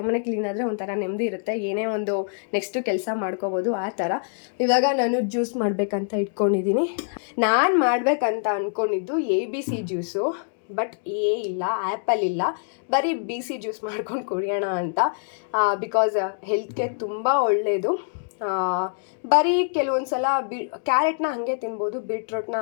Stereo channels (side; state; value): right; silent; digital silence